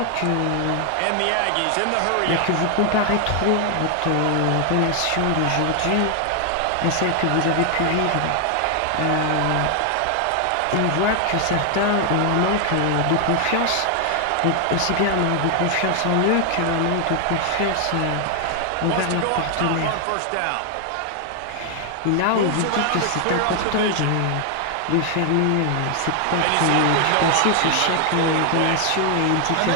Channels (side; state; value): both; different; correlation 0.00